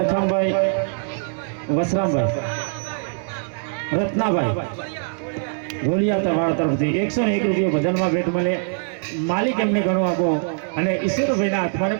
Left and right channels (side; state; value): left; silent; 64 dB below the other